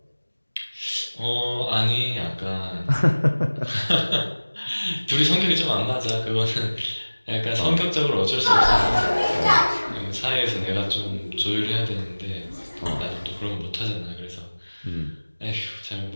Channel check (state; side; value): inverted; both; correlation -1.00